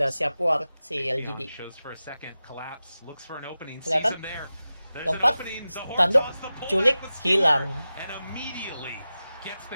siap war si Leon LGD. shows for a second, collapse, looks for an opening, sees Kelihatan? him there. There's an Lompat, opening, the horn tanduk, toss, the pullback culik, was hilang. and immediately gets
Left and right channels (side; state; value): both; inverted; correlation -0.95